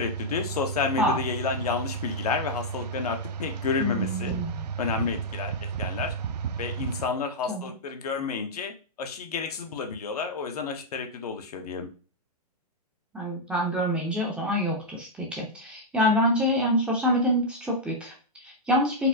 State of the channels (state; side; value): normal; both; correlation -0.06